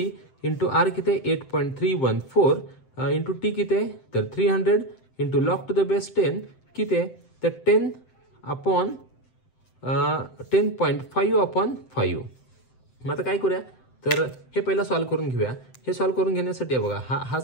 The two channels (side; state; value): right; late; 7.7 ms